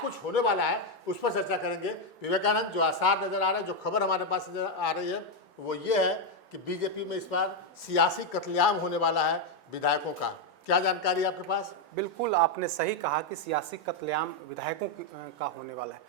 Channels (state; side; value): normal; both; correlation 0.03